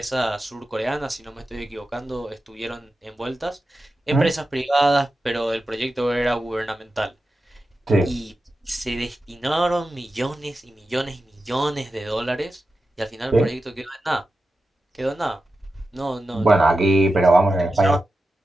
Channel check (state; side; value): normal; both; correlation 0.92